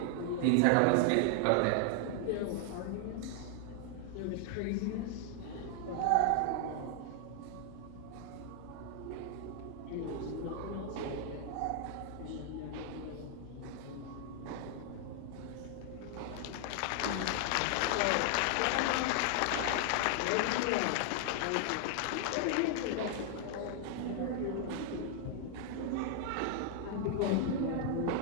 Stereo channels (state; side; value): different; both; correlation 0.00